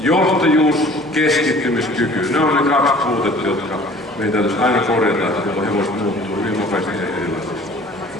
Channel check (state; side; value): normal; both; correlation 0.49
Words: keskittymiskyky, ne on ne 2 puutetta, jotka meidän täytyisi aina korjata, jolloin hevoset muuttuu hyvin nopeasti ja erilaisesti.